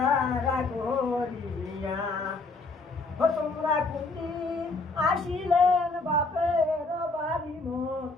করিয়া তোমরা কোনদিন আসিলেন বাপের বাড়ি মোর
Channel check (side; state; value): right; quieter; 3.5 dB